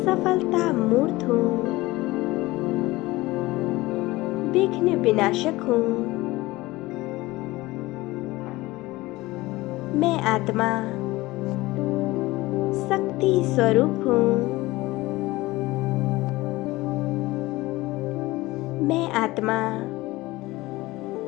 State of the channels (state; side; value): quieter; right; 19.7 dB